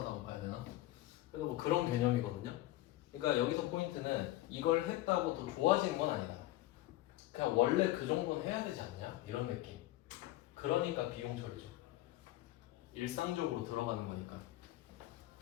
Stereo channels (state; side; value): quieter; right; 16.3 dB